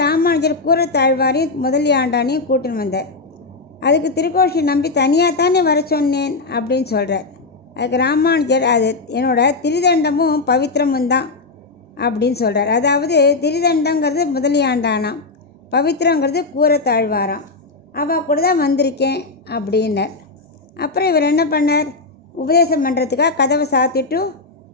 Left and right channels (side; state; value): right; quieter; 3.7 dB